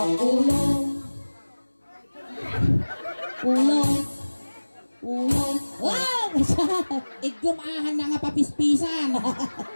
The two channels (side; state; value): both; inverted; correlation -1.00